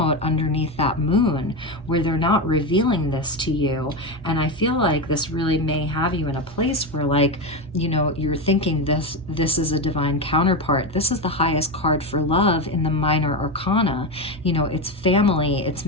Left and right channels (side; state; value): both; normal; correlation 0.15